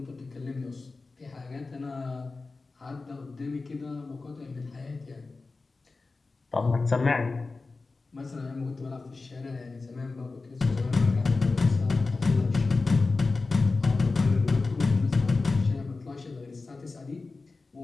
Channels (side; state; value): right; quieter; 3.8 dB